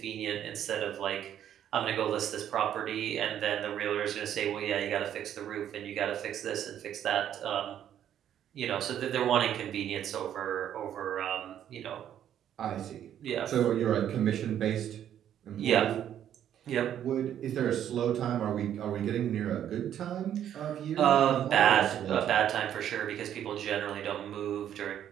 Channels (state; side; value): quieter; left; 10.3 dB